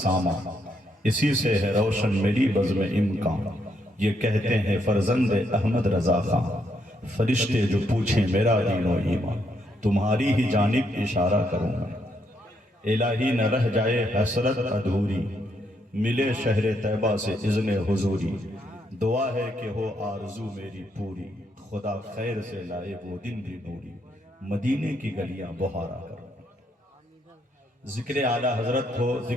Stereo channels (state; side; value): normal; both; correlation 0.76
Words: اسی سے ہے روشن میری بزم امکان۔ یہ کہتے ہیں فرزند احمد رضا خان، فرشتے جو پوچھیں میرا دین و ایمان، تمہاری ہی جانب اشارہ کروں میں۔ الہی نہ رہ جائے حسرت ادھوری، ملے شہر طیبہ سے اذن حضوری۔ دعا ہے کہ ہو آرزو میری پوری، خدا خیر سے لائے وہ دن بھی نوری، مدینے کی گلیاں بہارا کرو۔ ذکر اعلیٰ حضرت ہو،